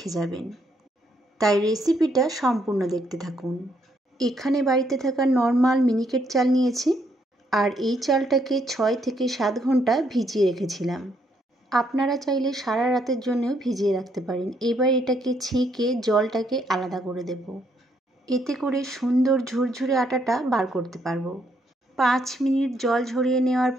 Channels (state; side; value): normal; both; correlation 0.73